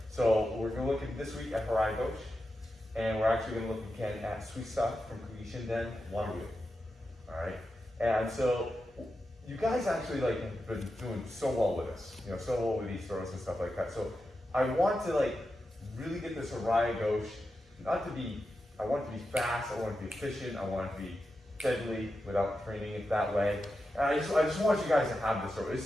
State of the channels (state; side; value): normal; both; correlation 0.89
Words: So we're going to look at this week at Harai Goshi, and we're actually going to look again at Suisa from Creation Den one wheel. All right. And so you guys actually like have been doing so well with us, so well with these throws and stuff like that. So I want to like really get this Harai Goshi, I want it to be fast, I want it to be efficient, I want it to be deadly without training it that way. And I just want you guys to have this throw.